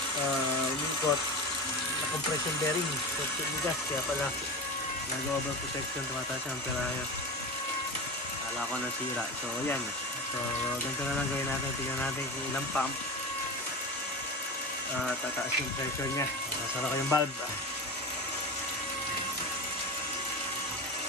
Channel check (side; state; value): both; normal; correlation 0.26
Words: umikot na compression bearing, so tinigas, kaya pala nag-over protection, tumataas ang amperahe. Kala ko nasira. So yan, so ganito na lang gawin natin. Tingnan natin kung ilang pump tataas yung pressure nya. Nasara ko yung valve.